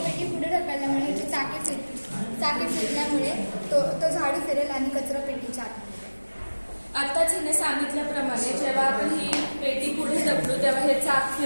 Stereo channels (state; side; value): inverted; both; correlation -1.00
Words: पुढे ढकलल्यामुळे ह्याची चाके फिरल्यामुळे तो झाडू फिरेल आणि कचरापेटीच्या आत। आत्ताच हिने सांगितल्याप्रमाणे जेव्हा आपण ही पेटी पुढे ढकलू तेव्हा हे चाक